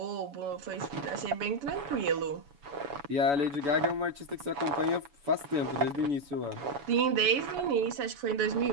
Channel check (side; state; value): left; late; 7.0 ms